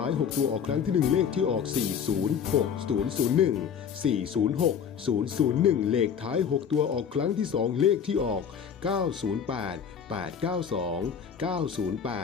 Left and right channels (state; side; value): quieter; right; 7.5 dB